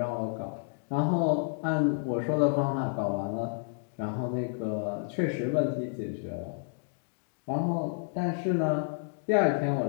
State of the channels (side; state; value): right; silent; digital silence